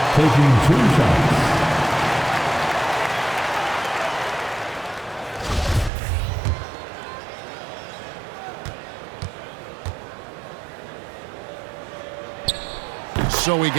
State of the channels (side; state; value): left; drops out; at 5.9 s